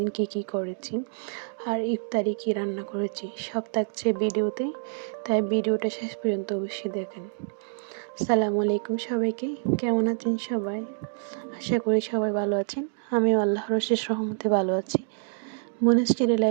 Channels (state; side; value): silent; left; digital silence